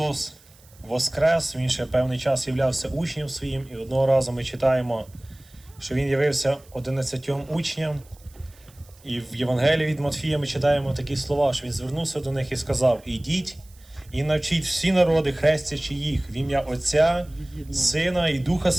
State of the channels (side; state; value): right; noise; hiss, 27 dB below the sound